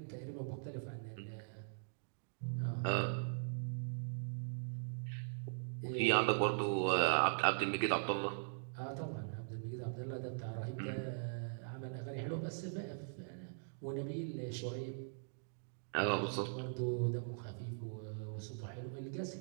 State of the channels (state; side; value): silent; left; digital silence